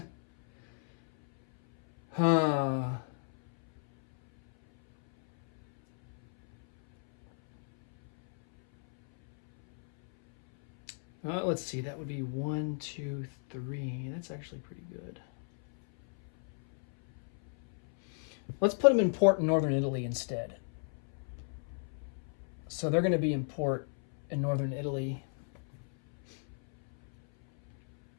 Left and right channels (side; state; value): right; silent; 56 dB below the other